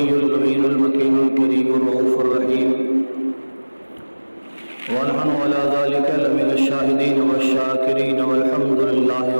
الامین المکین الکریم الرؤوف الرحیم، ونحن على ذلك لمن الشاہدین والشاکرین والحمد للہ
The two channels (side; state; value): both; inverted; correlation -1.00